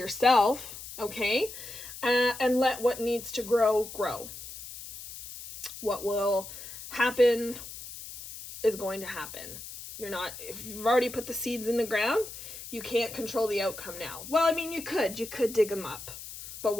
okay? And let what needs to grow, grow. What will happen is going to happen. If you've already put the seeds in the ground, you can't control the outcome now. Well, I mean, you could dig them up, but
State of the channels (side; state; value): left; noise; hiss, 12 dB below the sound